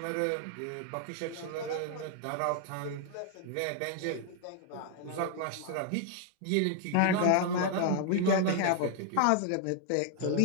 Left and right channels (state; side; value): different; both; correlation 0.00